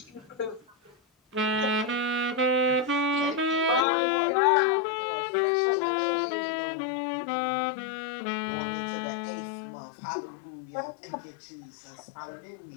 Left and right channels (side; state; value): right; drops out; at 3.9 s